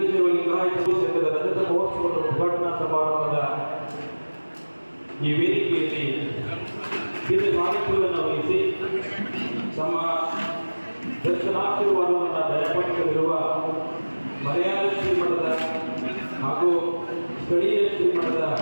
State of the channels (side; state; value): both; inverted; correlation -1.00